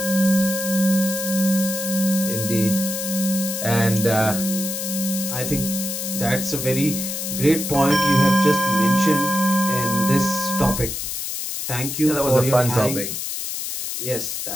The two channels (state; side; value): noise; left; hiss, 4 dB below the sound